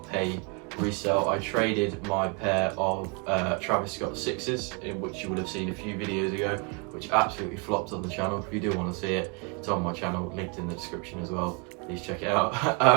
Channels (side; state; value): left; quieter; 32.8 dB